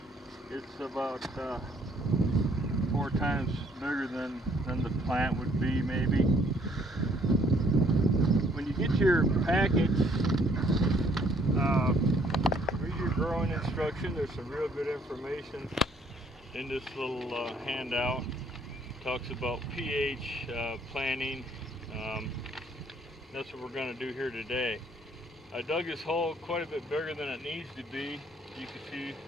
It's about 4 times bigger than the plant would be, maybe. When you get your package, read your growing instruction. There's some real good information in this little handout. Talks about pH, planting. That's what we're going to do here today. I dug this hole quite a bit bigger than it needs to be. You can see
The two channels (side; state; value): both; normal; correlation 0.63